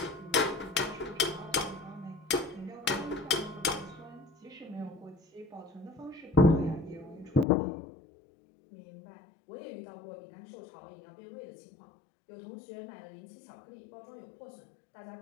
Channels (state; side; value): drops out; right; at 7.5 s